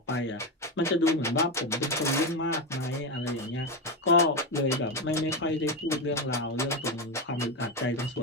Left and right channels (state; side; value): normal; both; correlation 0.12